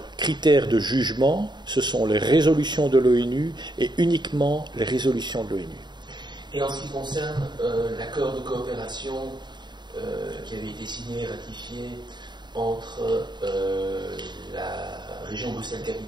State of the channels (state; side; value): late; left; 0.21 ms